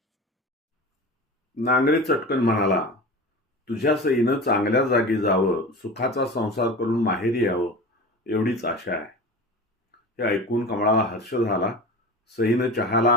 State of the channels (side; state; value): both; normal; correlation 0.32